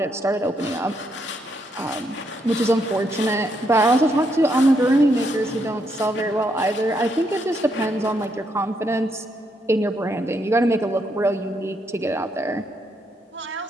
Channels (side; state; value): both; normal; correlation 0.77